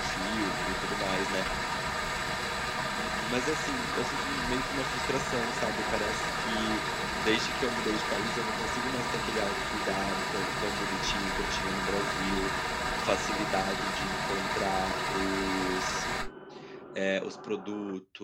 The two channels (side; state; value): both; identical; correlation 1.00